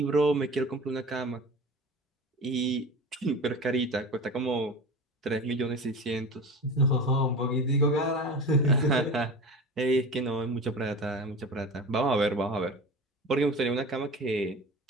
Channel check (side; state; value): both; normal; correlation 0.33